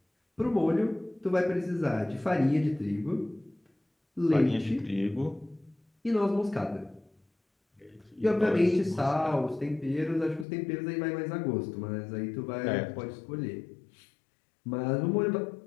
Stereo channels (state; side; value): drops out; right; at 10.5 s